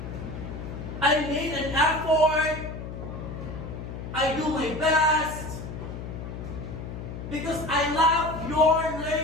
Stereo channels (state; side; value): noise; left; hum, 8 dB below the sound